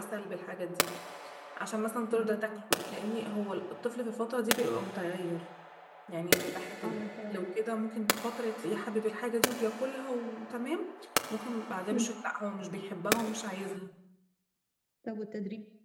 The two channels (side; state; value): both; identical; correlation 1.00